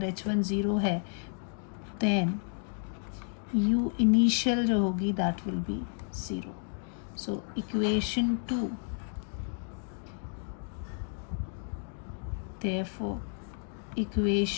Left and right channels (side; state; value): right; silent; 57 dB below the other